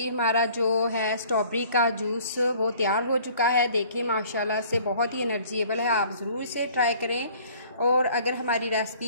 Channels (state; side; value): inverted; both; correlation -0.54